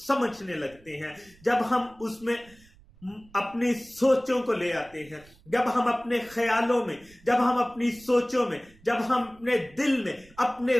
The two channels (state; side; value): noise; right; rumble, 26 dB below the sound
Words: लगते हैं, जब हम उसमें अपनी सोचों को ले आते हैं, जब हम अपने ख्यालों में, जब हम अपनी सोचों में, जब हम अपने दिल में अपने